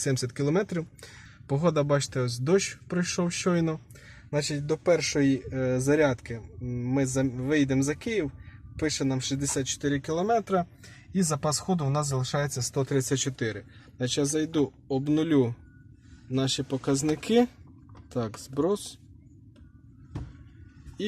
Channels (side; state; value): both; identical; correlation 1.00